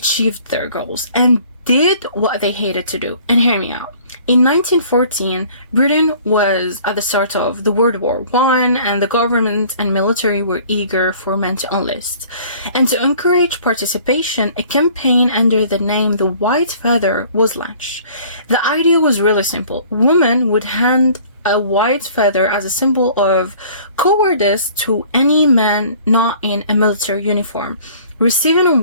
their goals and did what they hated to do. And hear me out. In 1914, Britain was at the start of the World War I, and the government and military were eager for men to enlist. And to encourage participation, a campaign under the name The White Feather was launched. The idea was really simple. Women would hand a white feather as a symbol of cowardice to any man not in a military uniform. Receiving a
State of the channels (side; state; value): both; inverted; correlation -0.52